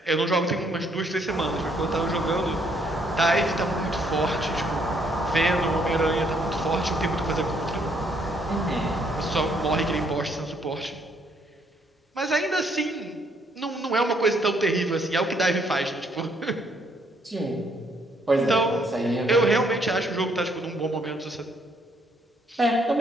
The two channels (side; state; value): both; normal; correlation 0.69